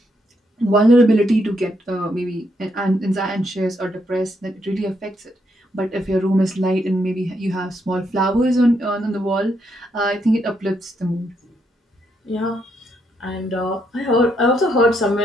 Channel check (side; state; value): both; normal; correlation 0.77